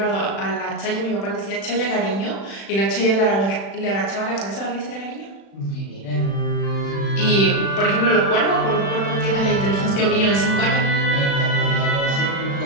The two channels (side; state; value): right; late; 36 ms